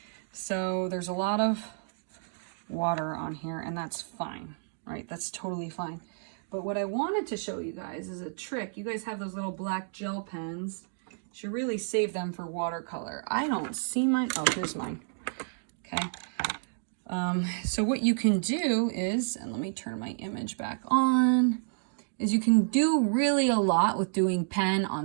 So there's a lot of water on here, and that's fine, right? That's totally fine. But what I wanted to show you guys is a trick. You guys have those little black gel pens. You should really save them for watercolor. I don't see mine. Oh, here's mine. Okay. So what you can do is, and let me turn my image back on, is you can do really a lot with doing pen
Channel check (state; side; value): silent; left; digital silence